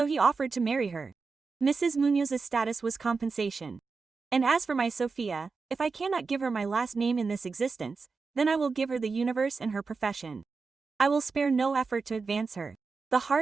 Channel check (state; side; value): quieter; left; 4.6 dB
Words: he offered to marry her. Mrs. Muñoz's status was compensation. And as for my Sofia, if I cannot give her my last name in this existence, then I will give her the universe and her profession. I will spare no effort to advance her. The